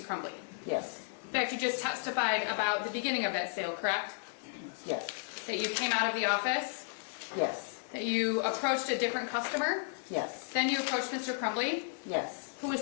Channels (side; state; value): right; silent; 55 dB below the other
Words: Crumbley. Yes. In fact, you just testified about the beginning of that sale, correct? Yes. That you came out of the office, Yes. that you approached a different customer, Yes. then you approached Mr. Crumbley, Yes. who